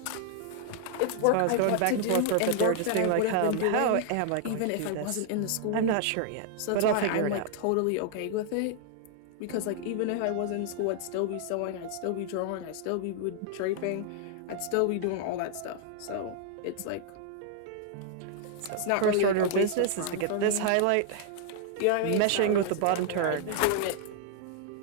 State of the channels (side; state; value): both; different; correlation 0.00